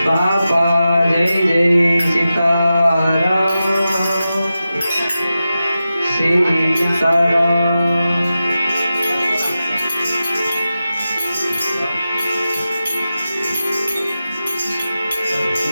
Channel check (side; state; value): both; inverted; correlation -0.92